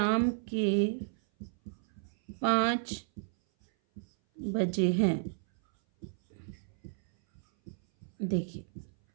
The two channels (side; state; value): left; silent; 56 dB below the other